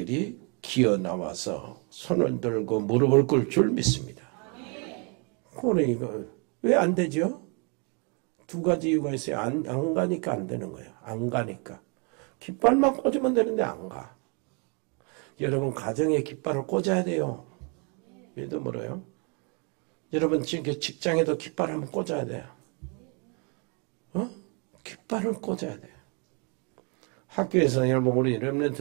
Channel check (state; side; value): quieter; left; 34.9 dB